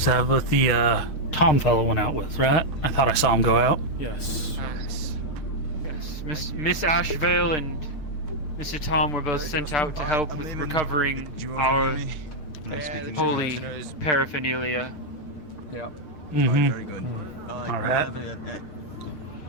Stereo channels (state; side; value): late; right; 6.6 ms